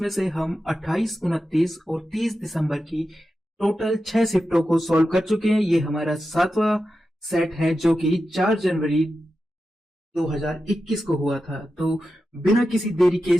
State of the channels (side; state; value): both; normal; correlation 0.91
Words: से हम 28, 29 और 30 दिसंबर की टोटल 6 शिफ्टों को सॉल्व कर चुके हैं। ये हमारा 7वां सेट है जो कि 4 जनवरी 2021 को हुआ था। तो बिना किसी देरी के